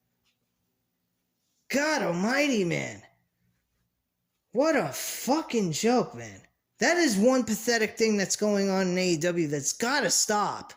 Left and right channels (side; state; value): both; identical; correlation 1.00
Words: God almighty, man. What a fucking joke, man. That is one pathetic thing that's going on in AEW that's gotta stop.